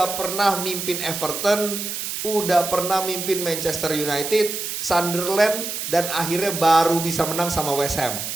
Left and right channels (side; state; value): right; noise; hiss, 5 dB below the sound